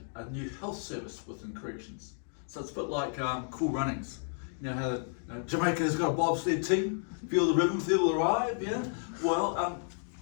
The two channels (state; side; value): silent; right; 56 dB below the other